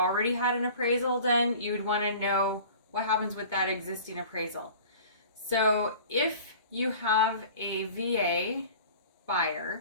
had an appraisal done, you'd want to know what happens with that existing appraisal. So if you have a VA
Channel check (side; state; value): both; inverted; correlation -0.43